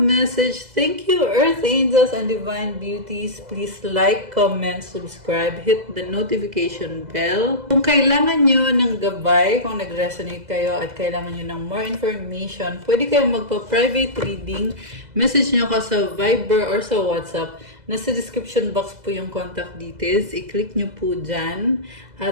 Thank you, Earth Angels and Divine Beauties. Please like, comment, subscribe, hit the notification bell. Kung kailangan nyo ng gabay, kung nag-resonate kayo at kailangan nyo ng more information, pwede kayong magpa-private reading. Message nyo ko sa Viber or sa WhatsApp. Nasa description box po yung contact details. I-click nyo po dyan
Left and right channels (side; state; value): left; late; 2.0 ms